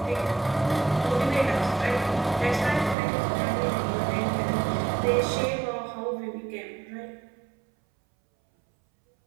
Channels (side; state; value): left; drops out; at 3.0 s